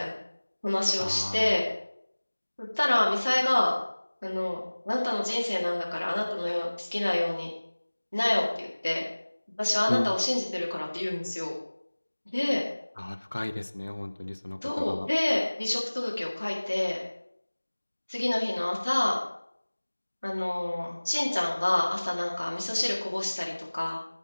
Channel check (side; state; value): both; inverted; correlation -1.00